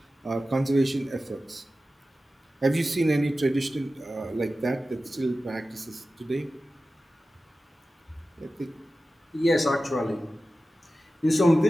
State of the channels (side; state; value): both; normal; correlation 0.94